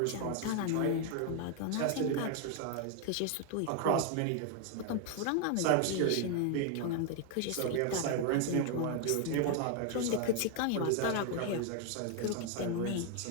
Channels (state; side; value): different; both; correlation 0.00